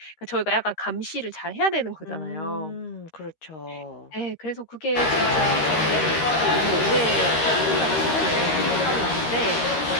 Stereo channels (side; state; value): right; late; 13 ms